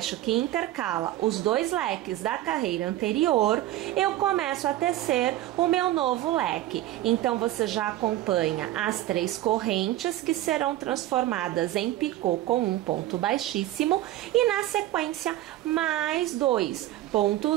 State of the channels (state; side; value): quieter; left; 14.6 dB